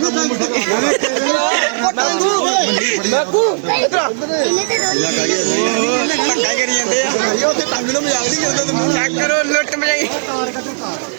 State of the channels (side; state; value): left; silent; digital silence